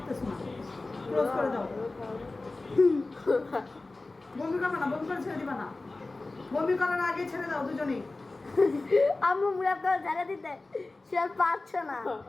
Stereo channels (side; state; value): right; quieter; 3.2 dB